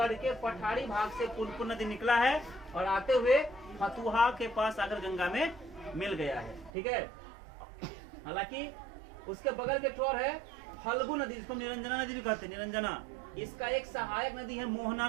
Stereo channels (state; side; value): drops out; left; at 6.7 s